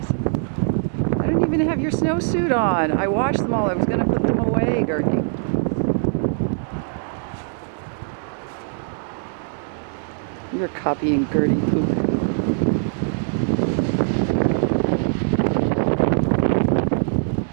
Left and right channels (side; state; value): left; silent; digital silence